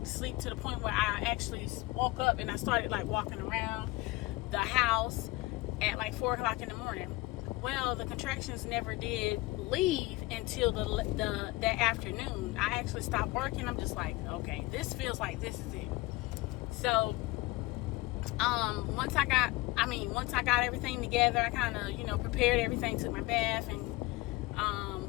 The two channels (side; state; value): right; quieter; 20.8 dB